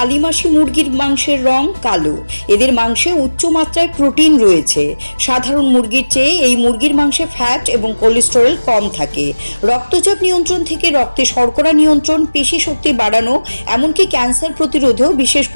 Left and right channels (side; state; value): both; inverted; correlation -1.00